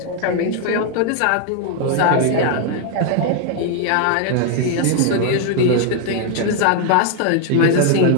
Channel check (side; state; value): both; different; correlation 0.00